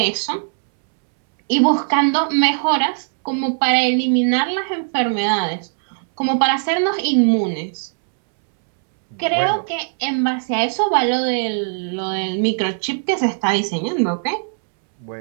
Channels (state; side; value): silent; left; 65 dB below the other